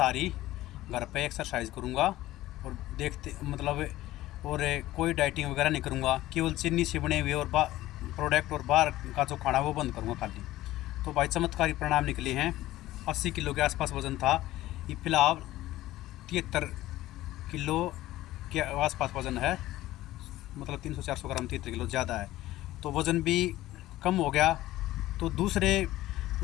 घर पे एक्सरसाइज करूँगा और देखते मतलब और कोई डाइटिंग वगैरह नहीं करूँगा, केवल चीनी से बने हुए और प्रोडक्ट और बाहर का जो खाना वो बंद करूँगा खाली। तो भाई चमत्कारी परिणाम निकले हैं। 80 किलो के आसपास वज़न था, ये फिलहाल 73 किलो के आसपास वज़न है, मतलब 300-400 ग्राम 73 किलो ज़्यादा है। तो वज़न भी कम हो गया। तो दूसरे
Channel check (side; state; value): right; quieter; 15.9 dB